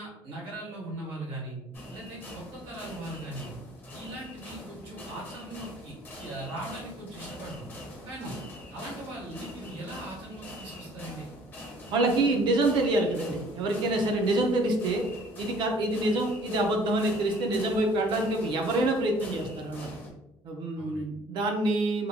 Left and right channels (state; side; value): normal; both; correlation 0.55